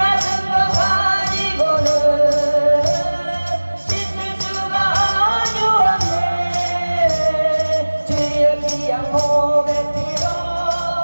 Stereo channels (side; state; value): both; inverted; correlation -1.00